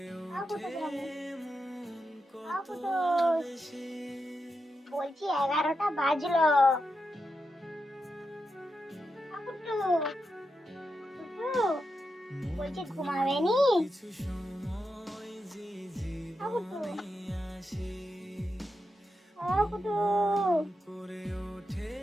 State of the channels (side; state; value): both; normal; correlation 0.87